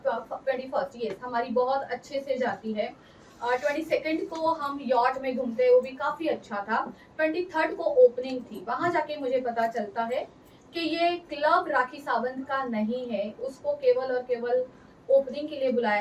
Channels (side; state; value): both; identical; correlation 1.00